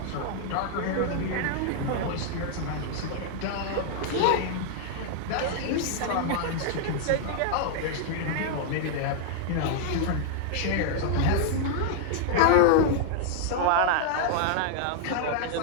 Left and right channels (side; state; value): both; different; correlation -0.01